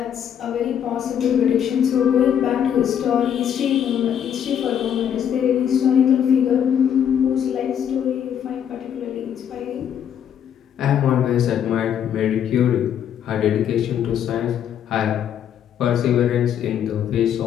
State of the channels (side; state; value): right; quieter; 9.1 dB